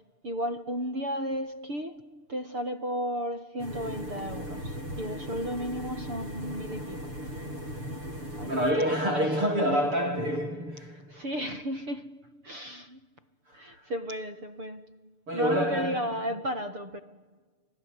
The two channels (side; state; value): left; late; 6.8 ms